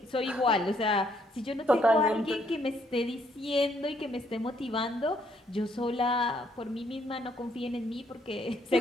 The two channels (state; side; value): normal; both; correlation 0.70